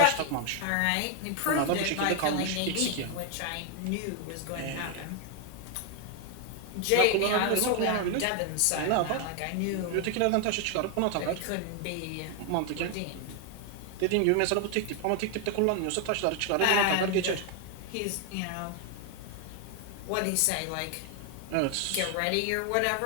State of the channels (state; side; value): different; both; correlation 0.01